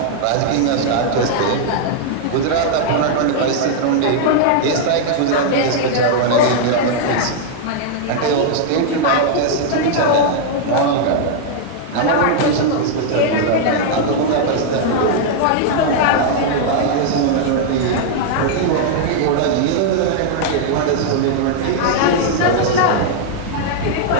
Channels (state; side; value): different; both; correlation -0.01